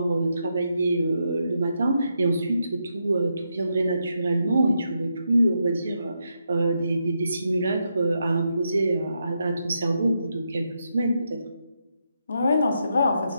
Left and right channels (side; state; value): both; inverted; correlation -0.82